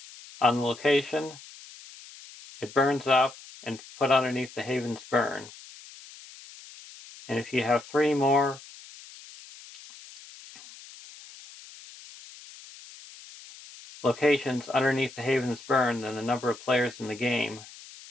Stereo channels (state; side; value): noise; left; hiss, 18 dB below the sound